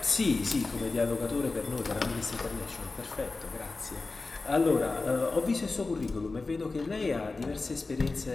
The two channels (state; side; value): quieter; right; 3.7 dB